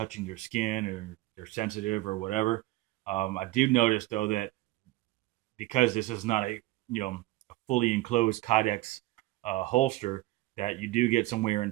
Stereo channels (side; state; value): left; quieter; 18.4 dB